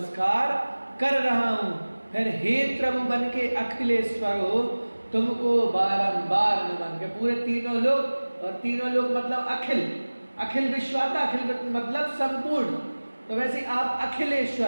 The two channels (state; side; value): inverted; both; correlation -1.00